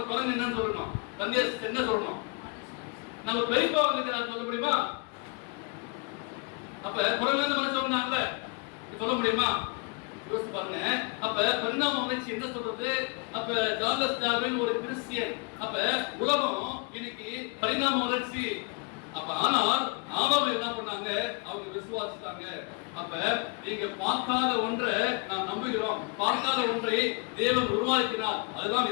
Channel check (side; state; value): right; quieter; 32.8 dB